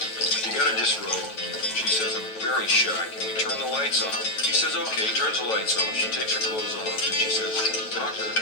you gotta disrobe. She says, I'm very shy. Can we turn the lights off? He says, okay, turns the lights off. She takes her clothes off, and she says, doctor,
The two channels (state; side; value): late; right; 9.1 ms